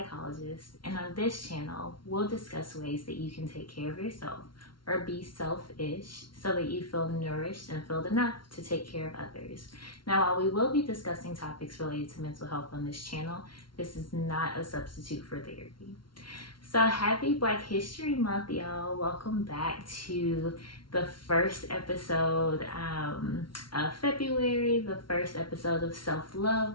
and on this channel, we'll discuss ways that you can take care of yourself or be selfish so that you feel nourished and filled enough to take care of others. Now, while we will be discussing topics related to mental health on this channel, this is not a substitute for therapy. So happy Black History Month, y'all. Welcome back to the first episode of February, the first episode of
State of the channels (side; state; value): right; late; 0.73 ms